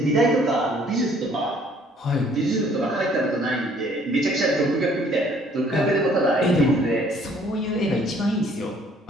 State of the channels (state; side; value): normal; both; correlation 0.60